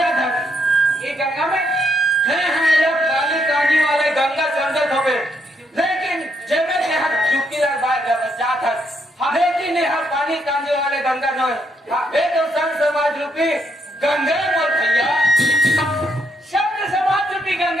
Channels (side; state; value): both; normal; correlation 0.75